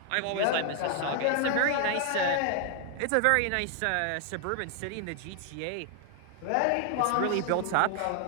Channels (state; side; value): different; both; correlation 0.00